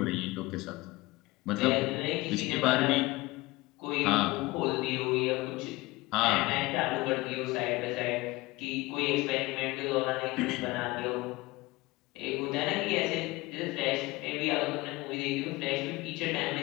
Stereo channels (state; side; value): quieter; right; 21.2 dB